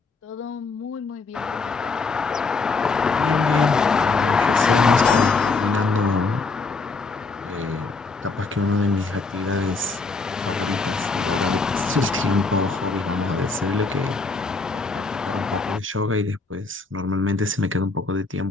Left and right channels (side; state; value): right; quieter; 4.0 dB